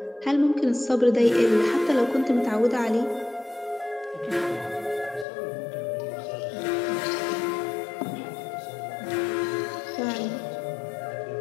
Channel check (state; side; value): drops out; right; at 5.2 s